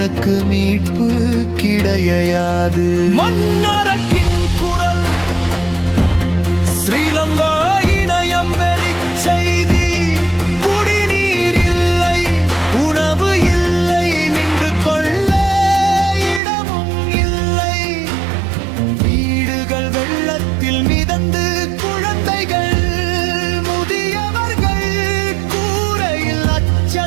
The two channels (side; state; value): left; drops out; at 16.4 s